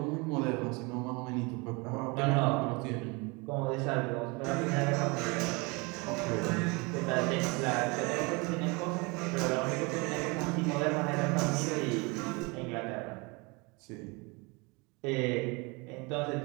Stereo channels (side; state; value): left; quieter; 27.9 dB